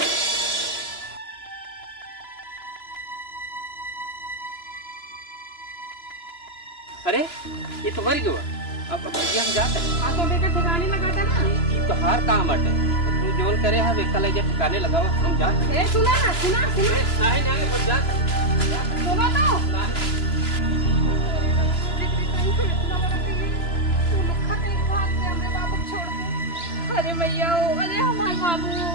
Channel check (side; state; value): right; late; 2.9 ms